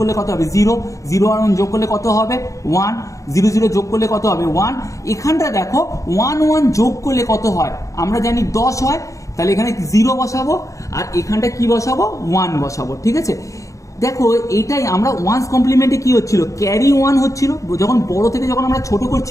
কত হবে 0, 0 আর 1 যোগ করলে কত হবে 1, 0 0 যোগ করলে কত হবে 1। এখানটা দেখো 1 1 যোগ করলে কত হয়, আমরা জানি 10 হয়, তাহলে এখানে 0 বসাবো আর এখানটা কি বসাবো 1 বসাবো, ঠিক আছে। দেখো এইটাই আমরা ওয়ান্স কমপ্লিমেন্টে কি হচ্ছিল, ক্যারি 1 হচ্ছিল। যখন বড় থেকে যখন আমরা ছোট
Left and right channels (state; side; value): late; right; 0.16 ms